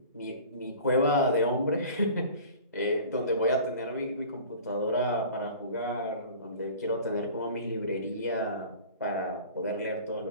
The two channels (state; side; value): inverted; both; correlation -0.43